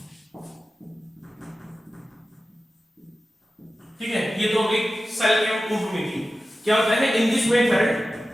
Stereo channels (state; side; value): normal; both; correlation 0.94